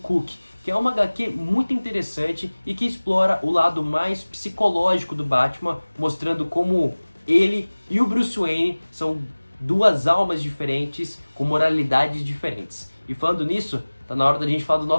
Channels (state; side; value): inverted; both; correlation -1.00